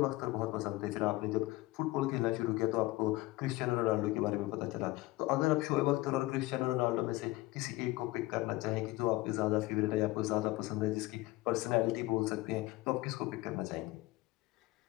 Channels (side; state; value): right; quieter; 19.3 dB